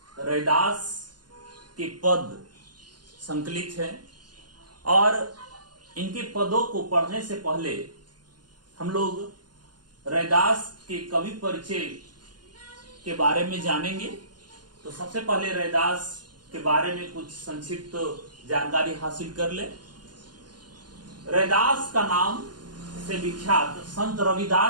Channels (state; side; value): late; left; 0.70 ms